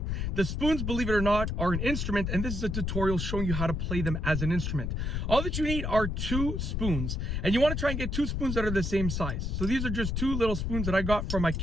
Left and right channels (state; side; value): noise; left; rumble, 1 dB below the sound